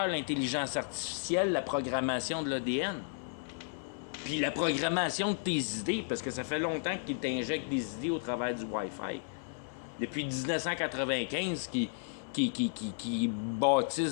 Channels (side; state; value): right; silent; 55 dB below the other